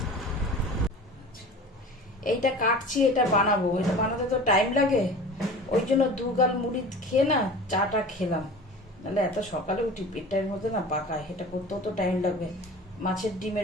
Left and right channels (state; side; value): normal; both; correlation 0.38